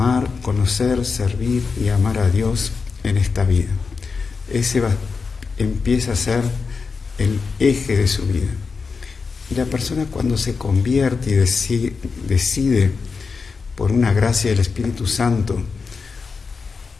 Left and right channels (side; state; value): right; quieter; 4.9 dB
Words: conocer, servir y amar a Dios en esta vida. Ese empieza a ser el eje de su vida. Y la persona, cuando se convierte y decide por una gracia del Espíritu Santo